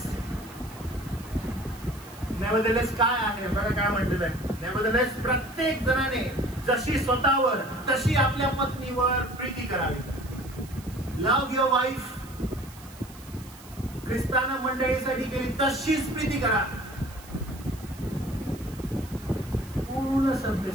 नेव्हरदलेस काय आहे बघा काय म्हटलेलं आहे. नेव्हरदलेस प्रत्येक जणाने जशी स्वतःवर तशी आपल्या पत्नीवर प्रीती करावी. लव्ह युअर वाईफ, ख्रिस्तानं मंडळीसाठी केली तशीच प्रीती करा. पूर्ण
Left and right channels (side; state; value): right; noise; hiss, 20 dB below the sound